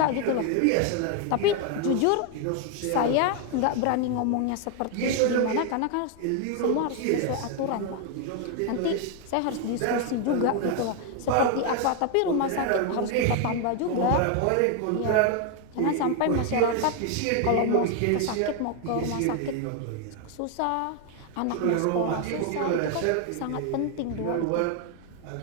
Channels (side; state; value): both; different; correlation 0.01